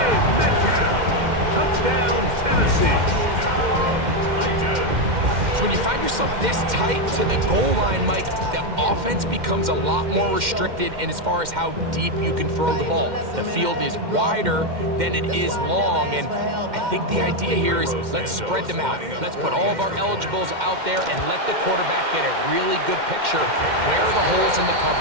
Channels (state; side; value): late; left; 2.1 ms